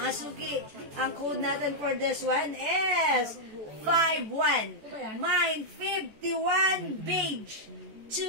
suki, ang code natin for this one is 51. Mine, 51 beige.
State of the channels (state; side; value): late; left; 14 ms